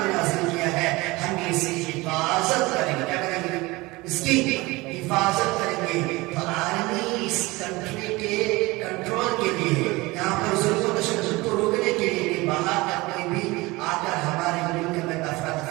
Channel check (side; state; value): left; quieter; 22.1 dB